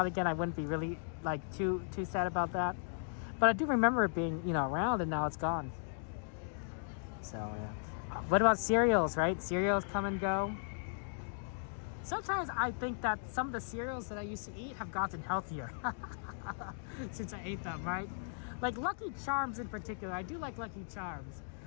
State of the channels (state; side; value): silent; right; digital silence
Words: it again, I wouldn't be really like too sad about that. But I do remember it being, you know, around, and now it's gone. So yeah. What about cereals, right? Cereals come and go. Sometimes I think that some of the cereals that I used to eat have gotten healthier since I ate them, right? Like Lucky Charms in particular. I do like Lucky Charms,